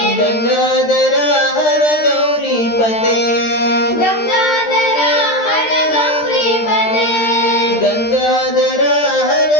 గంగాధర హర గౌరీపతే, గంగాధర హర గౌరీపతే, గంగాధర హర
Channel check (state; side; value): late; right; 13 ms